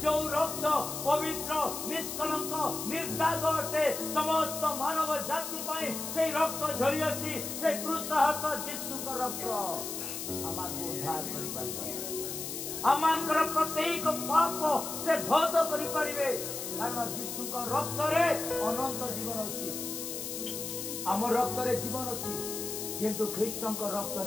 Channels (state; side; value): noise; left; hiss, 6 dB below the sound